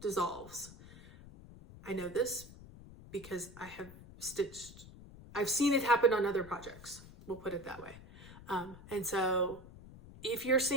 dissolves. I know this because I've seen it happen on other projects. We'll put it that way. And so if you're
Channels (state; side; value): noise; left; rumble, 17 dB below the sound